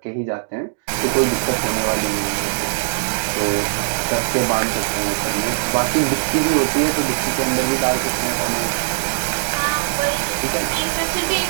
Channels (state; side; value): silent; left; digital silence